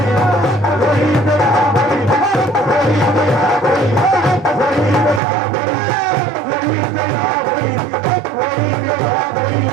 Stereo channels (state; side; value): drops out; left; at 5.2 s